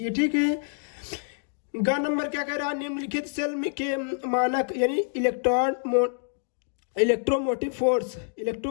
ठीक है। ग नंबर क्या कह रहा है? निम्नलिखित सेल में के मानक यानी इलेक्ट्रोमोटिव फोर्स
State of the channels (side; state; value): right; silent; digital silence